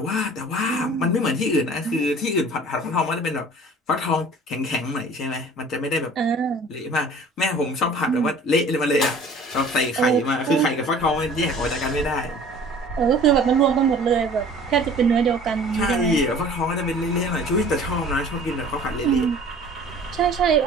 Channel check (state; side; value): normal; both; correlation 0.47